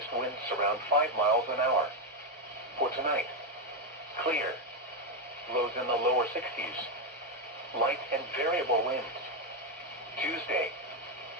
winds around 5 miles an hour. For tonight, clear. Lows in the lower 60s. Light and variable winds. Tuesday,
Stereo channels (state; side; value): normal; both; correlation 0.05